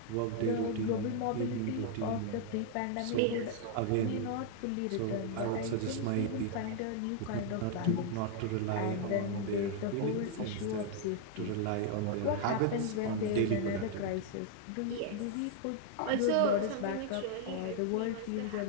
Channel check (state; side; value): different; both; correlation 0.00